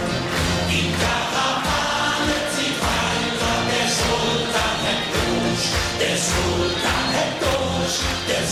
Die Karawane zieht weiter, der Sultan hat durch, der Sultan hat durch, der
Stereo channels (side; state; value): both; identical; correlation 1.00